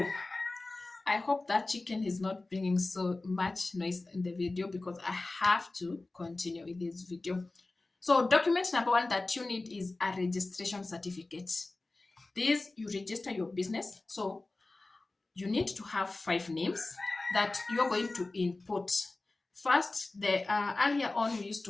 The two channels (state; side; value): quieter; right; 3.2 dB